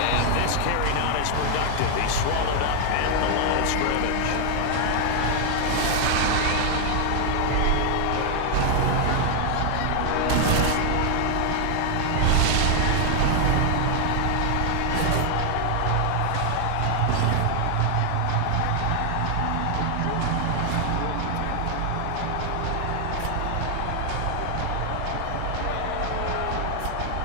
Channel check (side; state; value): both; different; correlation 0.00